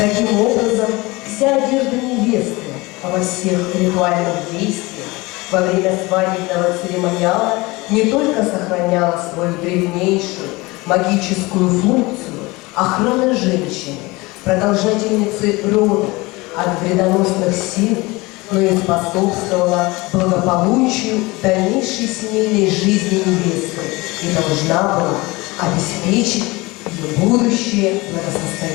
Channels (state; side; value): quieter; right; 22.9 dB